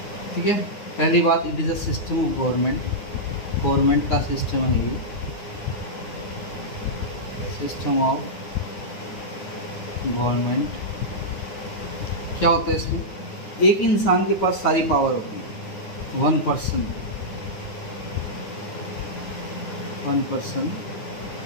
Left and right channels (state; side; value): late; right; 9.6 ms